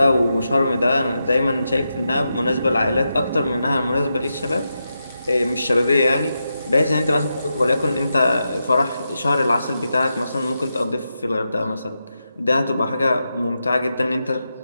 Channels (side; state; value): both; inverted; correlation -0.87